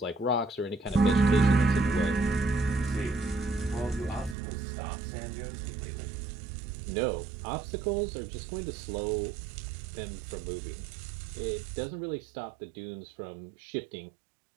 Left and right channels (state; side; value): drops out; left; at 4.4 s